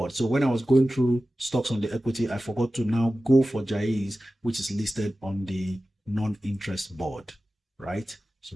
So when I was going through stocks on the equity, I forgot to now go for Jai's, which is listed on the non-interest board, right? So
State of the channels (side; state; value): both; normal; correlation 0.95